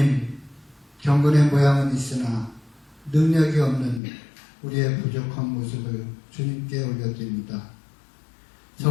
경건의 모양은 있으나 능력이 없는 우리의 부족한 모습을 주님께 올려드립니다.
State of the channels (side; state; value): right; drops out; at 4.0 s